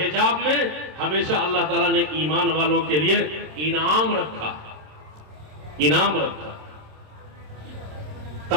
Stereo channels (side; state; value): left; late; 27 ms